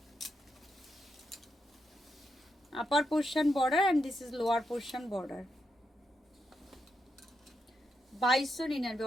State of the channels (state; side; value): normal; both; correlation 0.83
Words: Upper portion border and this is lower portion border. 2299।